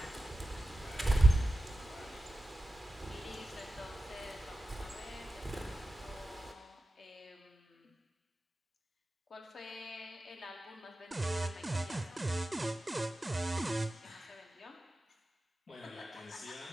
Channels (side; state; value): both; normal; correlation 0.94